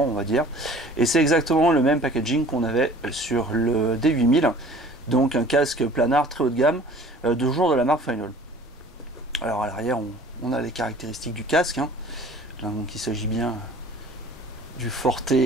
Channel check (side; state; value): both; normal; correlation 0.48